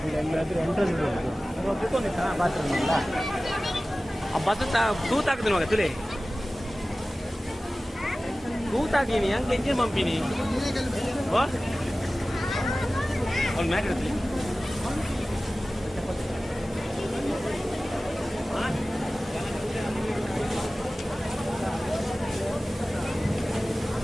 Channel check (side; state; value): both; normal; correlation 0.97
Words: ಎಲ್ಲಾದ್ರೂ ಎಂಟ್ರೆನ್ಸ್ ಕುತ್ಕೊಂಡಿತ್ತ ಬಾತ್ರೂಮ್ ಇಲ್ಲ. ಆ ಬಸ್ ತೂತಾಗ್ತದೆ ಮಗ ತುಲೆ ತೂತಾಕಿನಿ ಹಂಗೆ ಎಂಜಿನ್ ಪಂಪಿನಿ ಅವ್ನು ಮ್ಯಾಟ್ ಇಡ್ತೀನಿ.